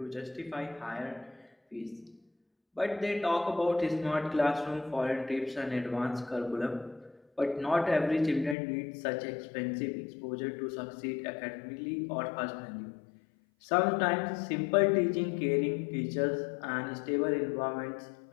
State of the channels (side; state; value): right; drops out; at 8.6 s